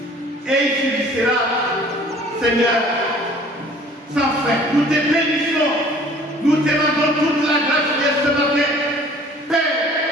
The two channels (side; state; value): both; normal; correlation 0.51